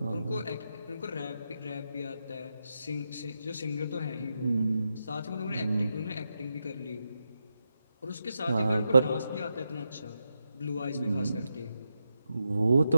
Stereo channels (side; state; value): both; inverted; correlation -0.87